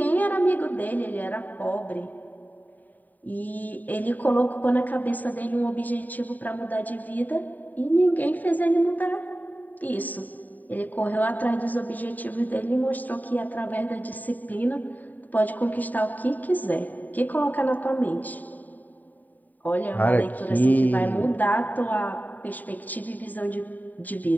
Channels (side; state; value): right; late; 0.084 ms